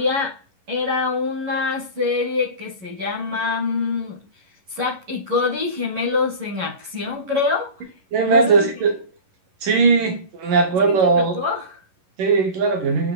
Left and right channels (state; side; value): late; left; 11 ms